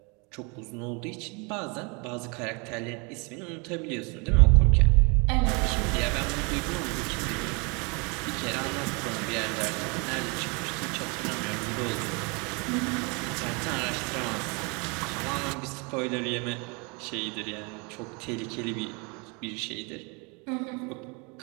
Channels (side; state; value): left; quieter; 31.4 dB